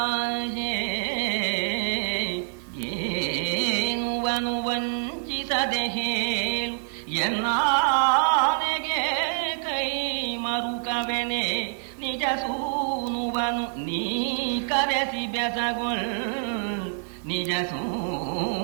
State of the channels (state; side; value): silent; left; digital silence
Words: ಏನುವನು ವಂಚಿಸದೆ ಹೇಳು ಎನ್ನಾನೆಗೆ ಕೈ ಮರುಕವೆನೆ. ನಿಜ ಸೂನುವನು ನೀ ಕರೆಸಿ ಬೆಸಗೊಳ್, ನಿಜ